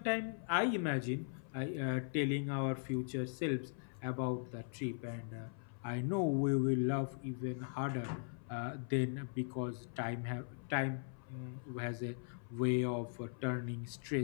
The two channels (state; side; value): silent; right; 51 dB below the other